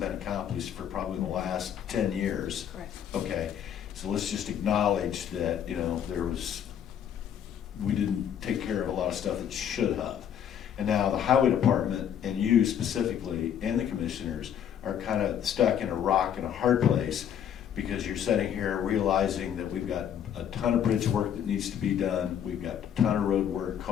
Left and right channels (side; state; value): right; quieter; 9.2 dB